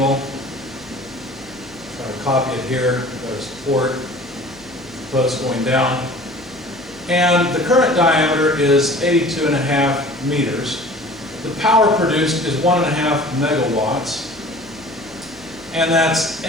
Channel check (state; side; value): noise; left; hum, 24 dB below the sound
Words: Try to copy it here. Got a support, post going down. And the current diameter is 82.5 meters. The power produced is 1.5 megawatts. And that's